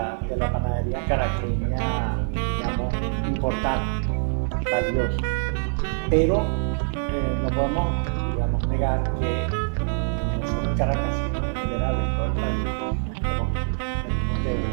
panadería caraqueña, digamos, importante, valiosa. Pero no podemos, digamos, negar que no solo en Caracas, sino en general en todo el país, venimos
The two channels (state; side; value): silent; left; 62 dB below the other